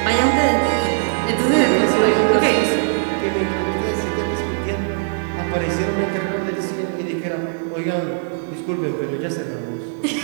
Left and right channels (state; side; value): silent; left; digital silence